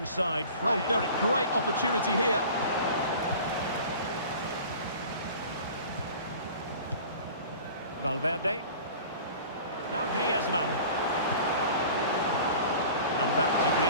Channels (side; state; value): both; inverted; correlation -0.41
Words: Fred. Oh, Derek, great opportunity here. Valverde. Now Griezmann. And back to